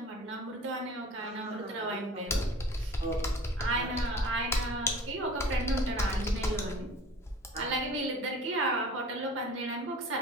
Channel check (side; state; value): both; normal; correlation 0.43